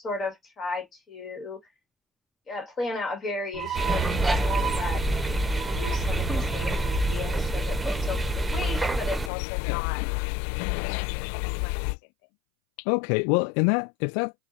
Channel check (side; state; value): right; drops out; at 9.3 s